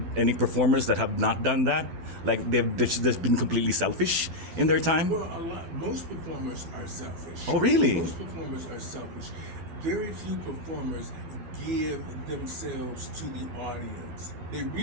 performers that have not done that? Like they've just been completely selfish in their time? Well, most performers are selfish. Oh, really? Most performers are selfish. Very few performers give themselves to the audience. They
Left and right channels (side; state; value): left; late; 11 ms